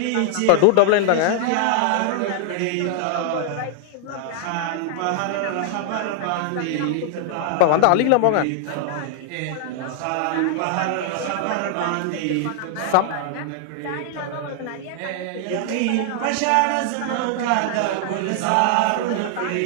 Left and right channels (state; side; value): different; both; correlation -0.01